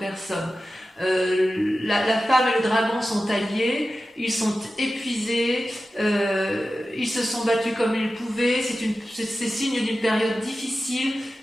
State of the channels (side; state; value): both; normal; correlation 0.94